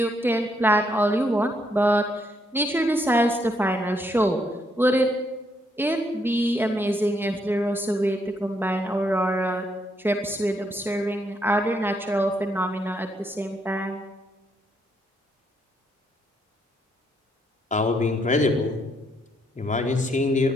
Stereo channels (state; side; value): normal; both; correlation 0.74